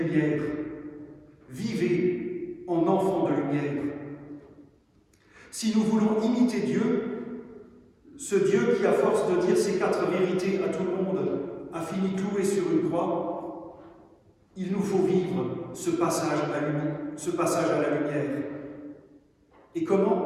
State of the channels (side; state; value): both; identical; correlation 1.00